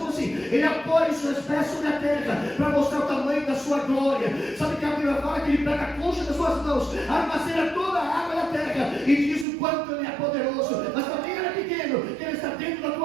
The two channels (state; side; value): drops out; left; at 9.5 s